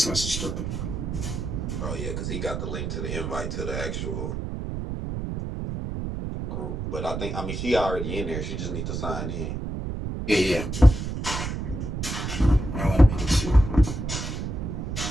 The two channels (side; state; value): right; noise; rumble, 4 dB below the sound